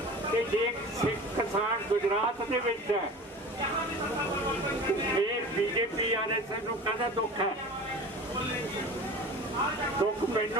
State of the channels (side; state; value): both; normal; correlation 0.37